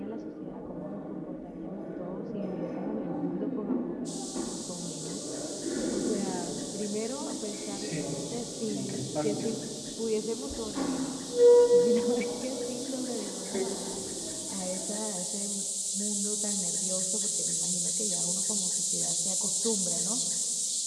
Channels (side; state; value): both; identical; correlation 1.00